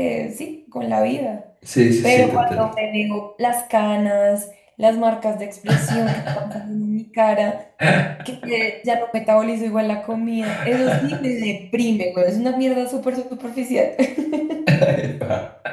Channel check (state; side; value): identical; both; correlation 1.00